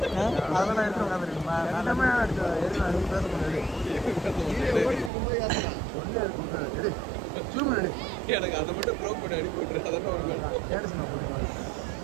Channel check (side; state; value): left; drops out; at 5.1 s